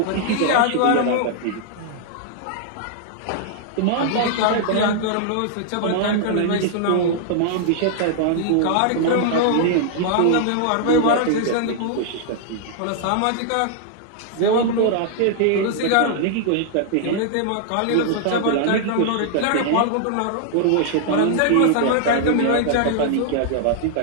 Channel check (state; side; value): different; both; correlation -0.01